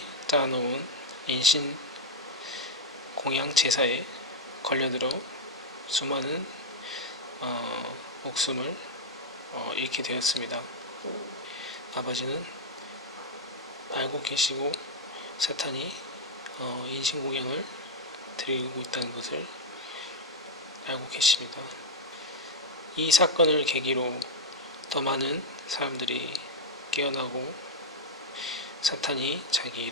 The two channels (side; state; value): both; normal; correlation 0.01